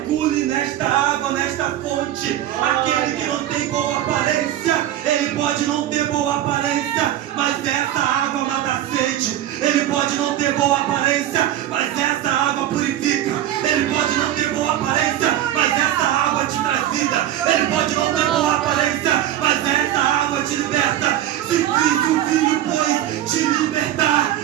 nesta água, nesta fonte. Aquele que não tem boa aparência, ele pode não ter boa aparência, mas essa água mata a sede. Ele pode não ter boa aparência, mas essa água purifica. Ele pode não ter boa aparência, mas essa água te traz vida. Ele pode não ter boa aparência, mas essa água te liberta. Se o Filho, pois, te libertar,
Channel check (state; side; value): quieter; left; 12.2 dB